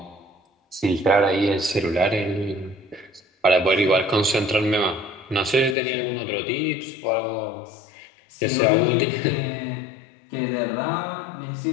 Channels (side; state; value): right; drops out; at 5.8 s